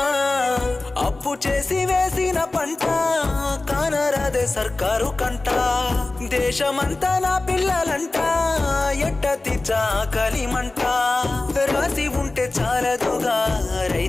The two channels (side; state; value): right; quieter; 3.1 dB